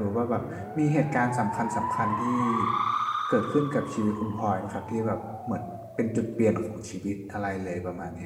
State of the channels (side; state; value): both; identical; correlation 1.00